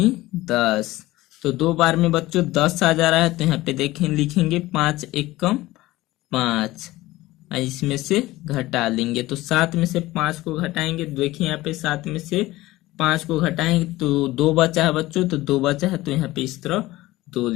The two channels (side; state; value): right; quieter; 18.0 dB